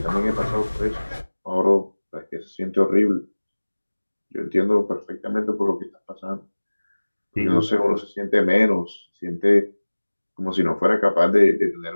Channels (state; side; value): inverted; both; correlation -1.00